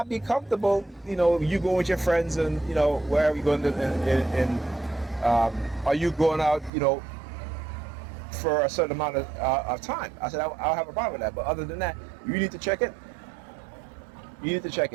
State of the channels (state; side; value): drops out; left; at 6.7 s